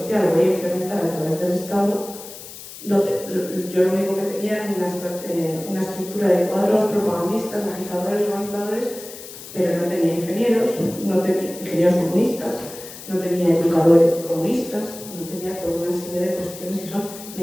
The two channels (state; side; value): noise; left; hiss, 14 dB below the sound